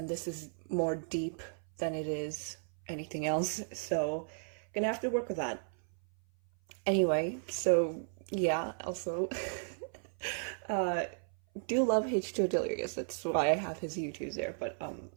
this is more deep than it is anything else. So gonna have to work with that. Anyway, so yeah, also uh do love H2O Delirious. That's why I have his YouTubes there. But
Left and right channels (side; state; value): left; silent; 55 dB below the other